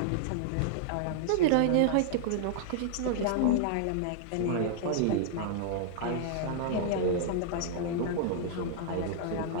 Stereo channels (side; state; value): both; different; correlation -0.01